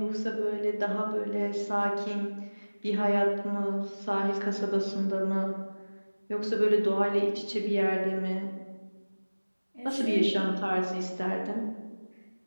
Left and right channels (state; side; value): inverted; both; correlation -1.00